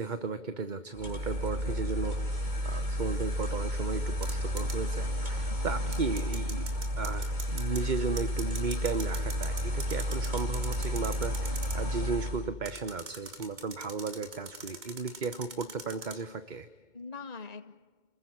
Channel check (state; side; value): late; left; 2.2 ms